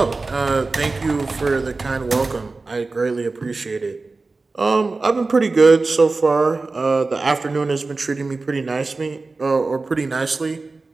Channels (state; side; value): quieter; left; 3.7 dB